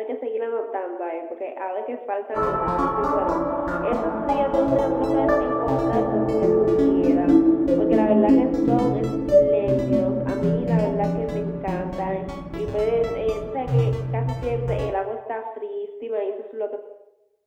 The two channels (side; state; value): both; identical; correlation 1.00